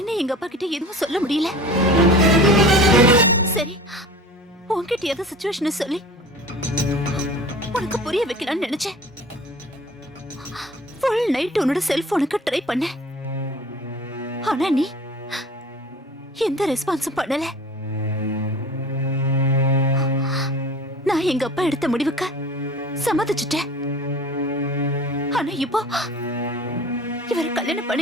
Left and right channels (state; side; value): normal; both; correlation 0.40